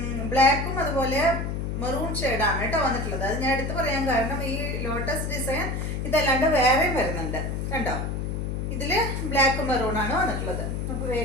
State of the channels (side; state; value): left; noise; hum, 2 dB below the sound